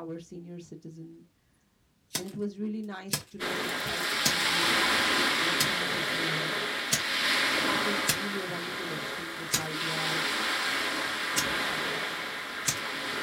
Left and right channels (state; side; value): identical; both; correlation 1.00